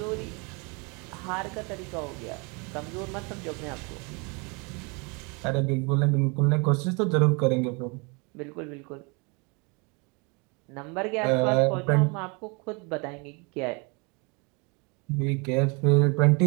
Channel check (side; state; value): left; quieter; 31.3 dB